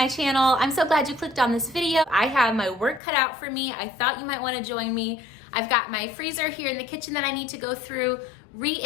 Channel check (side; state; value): right; drops out; at 3.0 s